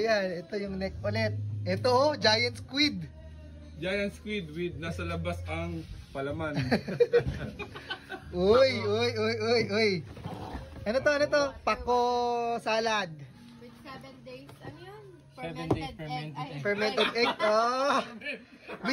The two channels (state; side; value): identical; both; correlation 1.00